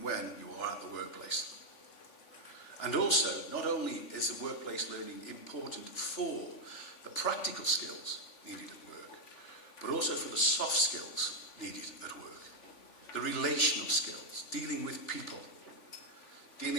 when you are at the workplace. And also, not only is the workplace learning important for the practical skills needed at work, but also for the soft skills needed at work. The relational skills, dealing with people,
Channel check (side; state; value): right; late; 3.4 ms